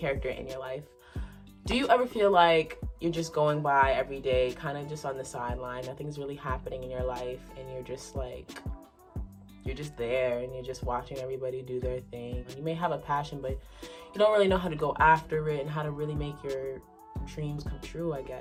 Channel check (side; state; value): both; identical; correlation 1.00